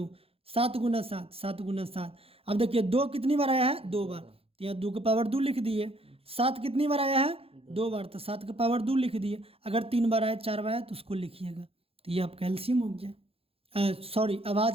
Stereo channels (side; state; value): left; late; 0.28 ms